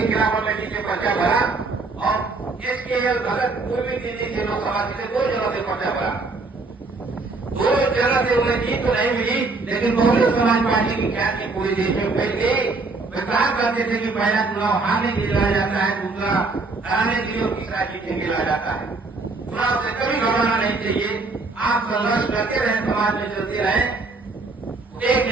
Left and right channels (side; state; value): left; quieter; 3.7 dB